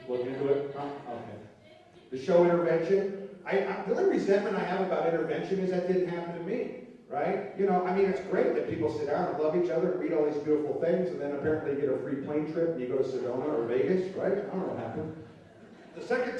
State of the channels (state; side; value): identical; both; correlation 1.00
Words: look into it. Huh? Okay. The show Intervention. The only resentment I have about intervention is that didn't happen to me, right? You know, I mean, it's great that people sit down and love each other and read all these beautiful things, and then apparently you get a free plane trip and you go to Sedona or Vegas, right? I don't know what happened. The second